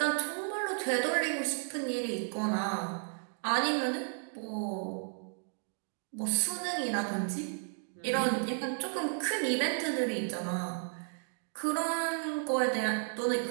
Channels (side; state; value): left; silent; 56 dB below the other